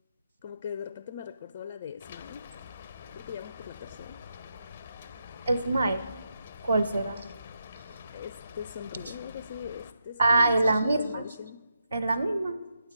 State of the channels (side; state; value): both; inverted; correlation -0.83